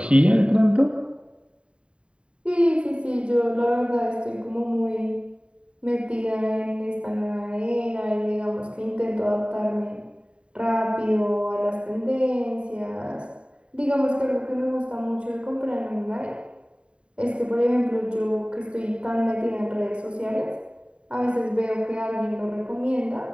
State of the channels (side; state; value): left; late; 0.055 ms